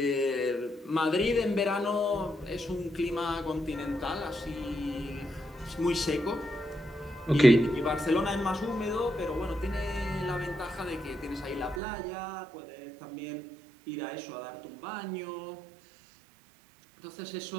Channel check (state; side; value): drops out; left; at 11.8 s